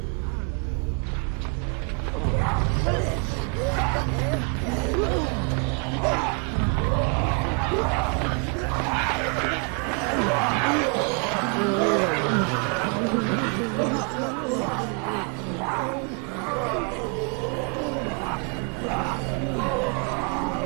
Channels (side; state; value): left; quieter; 37.5 dB